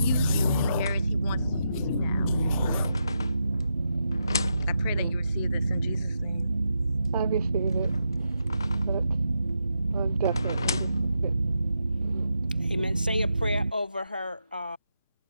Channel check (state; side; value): inverted; both; correlation -0.84